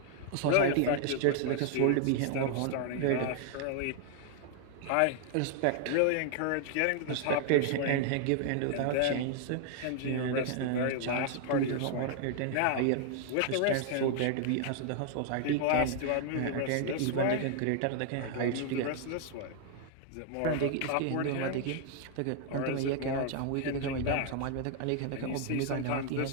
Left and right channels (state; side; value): different; both; correlation 0.00